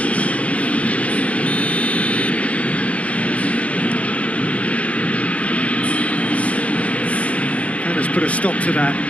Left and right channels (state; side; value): late; right; 0.065 ms